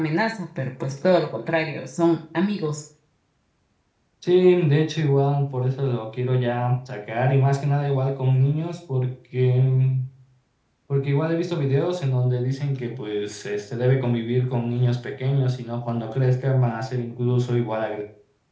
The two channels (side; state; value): both; identical; correlation 1.00